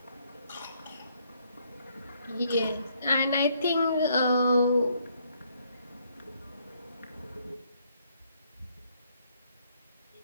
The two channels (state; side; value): inverted; both; correlation -0.70